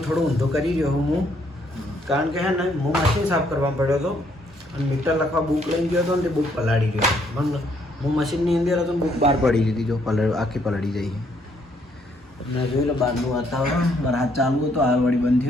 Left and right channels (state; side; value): normal; both; correlation 0.69